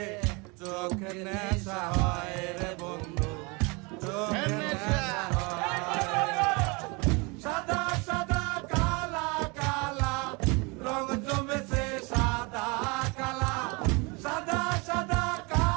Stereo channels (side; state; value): left; quieter; 28.5 dB